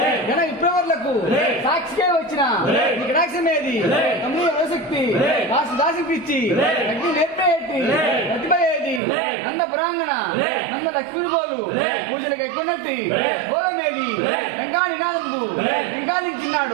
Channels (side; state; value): left; drops out; at 9.0 s